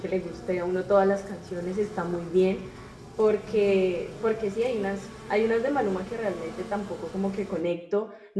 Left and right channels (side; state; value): both; identical; correlation 1.00